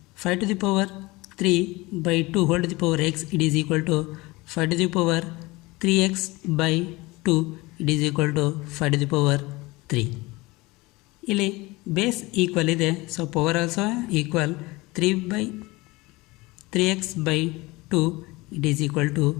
5 to the power 3/2 whole to the power x it is equal to 5 to the power 3x/2 it is equal to 5 to the power 3. ಇಲ್ಲಿ ಬೇಸ್ ಈಕ್ವಲ್ ಇದೆ, so power also equal. 3x/2 it is equal to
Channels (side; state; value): right; quieter; 22.3 dB